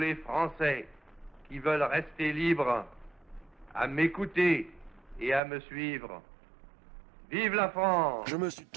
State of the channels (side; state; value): left; drops out; at 5.4 s